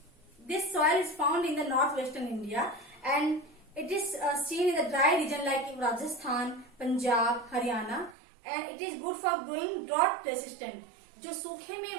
this soil is found in the northwestern India, and it is seen in the dry region like Rajasthan, Punjab, Haryana, and it is good for growing drought resistant. जो सूखे में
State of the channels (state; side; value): drops out; left; at 8.2 s